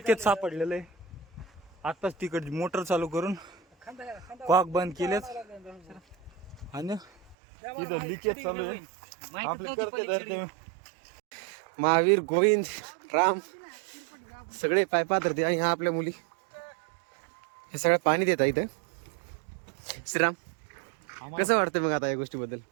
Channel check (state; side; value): drops out; left; at 7.4 s